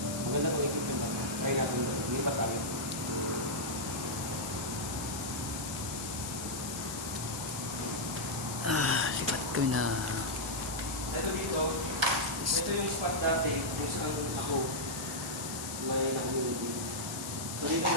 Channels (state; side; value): noise; left; hiss, 7 dB below the sound